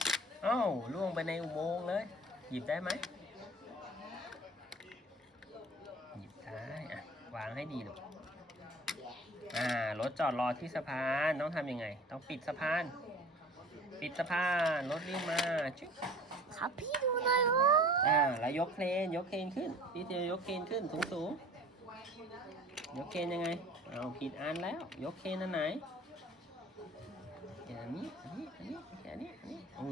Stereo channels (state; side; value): normal; both; correlation 0.45